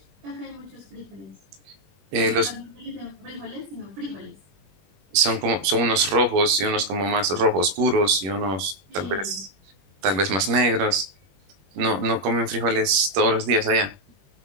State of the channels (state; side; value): late; left; 21 ms